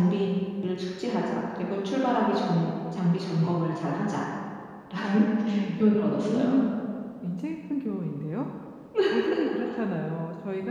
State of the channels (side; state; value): both; identical; correlation 1.00